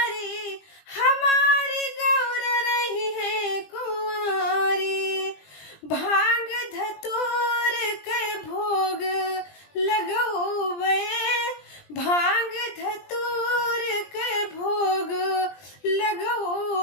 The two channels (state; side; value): late; right; 20 ms